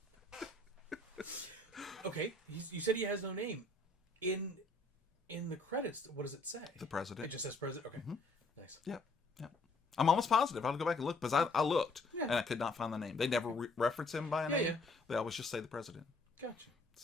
Okay. You said he has no name. In the credits, what does it say? The president. It just says president? Okay. Mm-hmm. Nice. Yep. I'm almost positive. I'll go back and look, because I looked, and I could not find the name. They never reference him by a name. Yeah. They always just say the president. Gotcha.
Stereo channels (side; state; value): right; quieter; 3.0 dB